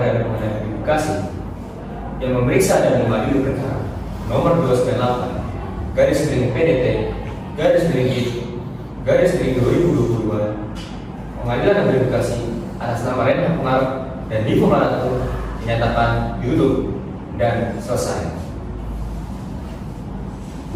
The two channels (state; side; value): identical; both; correlation 1.00